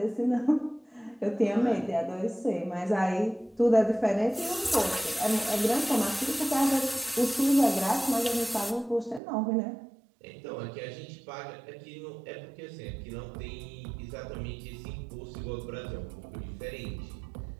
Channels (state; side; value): drops out; left; at 9.2 s